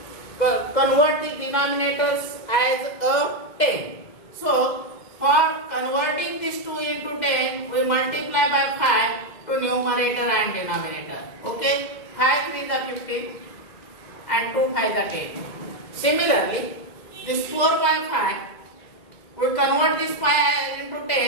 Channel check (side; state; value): right; late; 2.2 ms